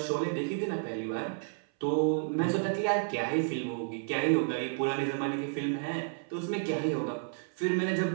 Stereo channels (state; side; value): silent; left; 57 dB below the other